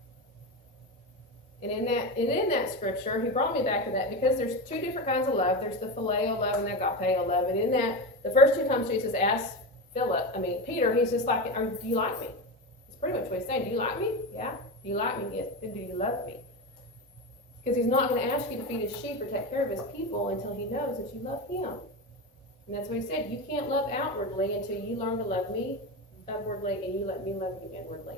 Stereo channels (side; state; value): both; normal; correlation 0.19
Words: And in that scripture, he brought me back to that because there's two different kinds of love. There's the phileo love and the agapeo love. And in that, the first two times Jesus asked Peter, he's just like, do you like me? It's pretty much what he's saying. Do you like me? Yeah. Do you like me? Yes. Then do you love me? Because he's not going to ask you to feed his sheep or take care of his people until he knows that you love him. And that's what he said. You can't love outwardly until you learn to love me upwardly and you let me love you